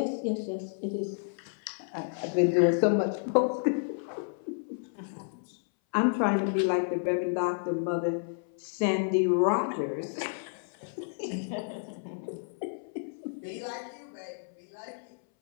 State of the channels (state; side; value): silent; right; 57 dB below the other